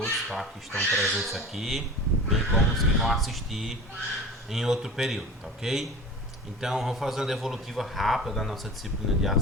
tá? Que estão presentes aqui, bem como os que vão assistir em outro período, tá ok? Então, vamos fazer uma devolutiva rápida da nossa disciplina de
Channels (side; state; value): both; normal; correlation 0.36